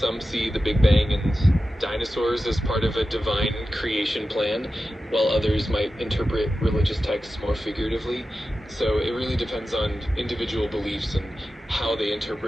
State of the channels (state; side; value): normal; both; correlation 0.93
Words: see the Big Bang and dinosaurs as part of a divine creation plan, while others might interpret religious texts more figuratively. So it really depends on individual beliefs and how they